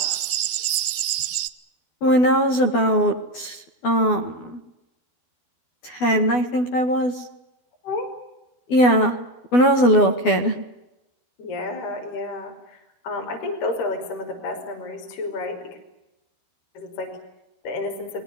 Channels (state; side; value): late; right; 12 ms